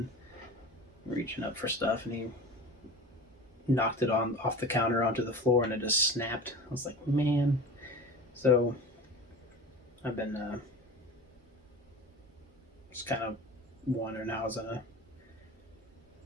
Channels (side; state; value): both; normal; correlation 0.35